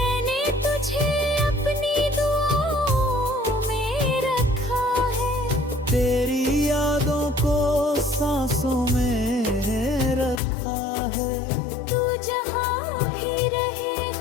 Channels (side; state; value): right; drops out; at 10.4 s